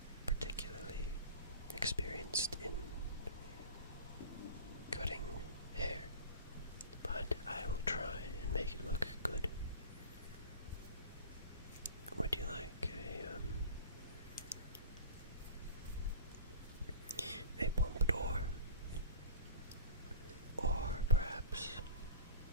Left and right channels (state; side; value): inverted; both; correlation -0.38